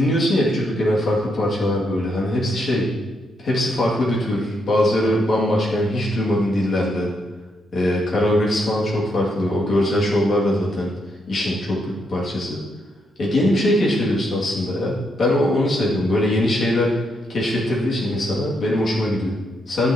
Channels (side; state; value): both; normal; correlation 0.78